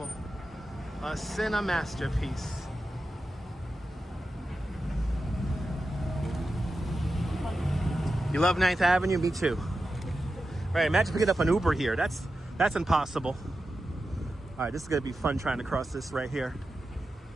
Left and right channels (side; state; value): both; normal; correlation 0.91